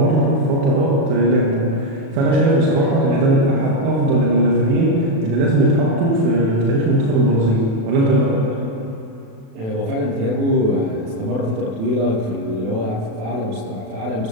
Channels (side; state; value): left; late; 36 ms